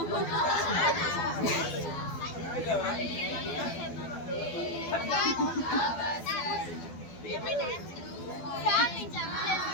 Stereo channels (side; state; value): right; late; 12 ms